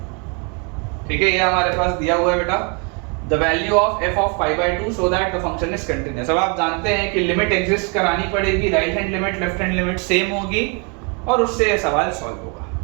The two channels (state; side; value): quieter; left; 34.6 dB